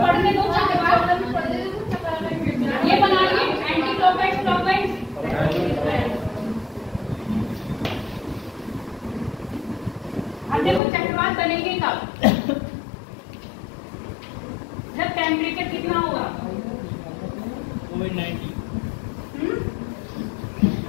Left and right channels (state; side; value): drops out; right; at 10.8 s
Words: दो। ये बनाइए एंटी क्लॉकवाइज क्लॉकवाइज। अब देखो चक्रवात बनेंगे कब? जब टेम्परेचर कितना होगा?